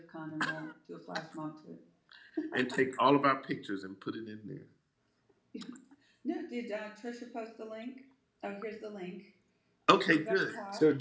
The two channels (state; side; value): identical; both; correlation 1.00